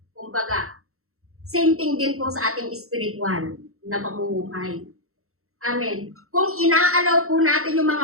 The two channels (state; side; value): late; left; 0.63 ms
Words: kumbaga. Same thing din po sa ating spiritual na pamumuhay. Amen. Kung inaalaw po natin yung